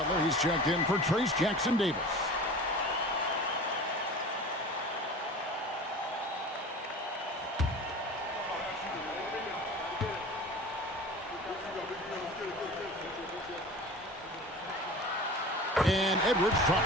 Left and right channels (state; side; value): normal; both; correlation 0.37